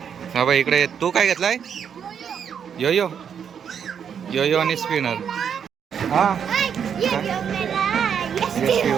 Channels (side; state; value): left; quieter; 7.7 dB